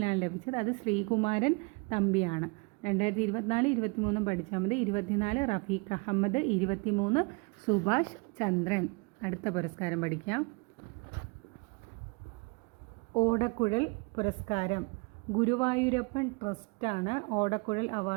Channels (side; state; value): left; quieter; 30.5 dB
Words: ലഭിച്ചത് അത് ശ്രീകുമാരൻ തമ്പിയാണ്. 2024 23 പഠിച്ചാൽ മതി. 24 റഫീഖ് അഹമ്മദ്, 23 സുഭാഷ് ചന്ദ്രൻ. അടുത്ത പുരസ്കാരം പഠിക്കാം. ഓടക്കുഴൽ പുരസ്കാരം. ഗുരുവായൂരപ്പൻ ട്രസ്റ്റാണ് ഓടക്കുഴൽ